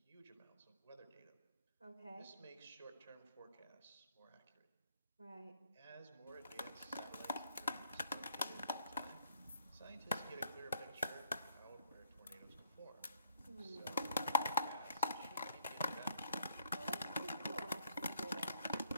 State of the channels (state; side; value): inverted; both; correlation -0.64